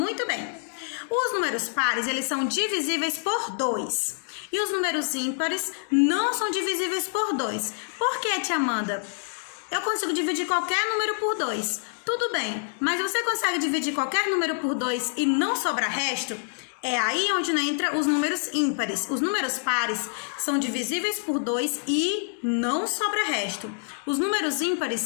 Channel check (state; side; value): silent; right; digital silence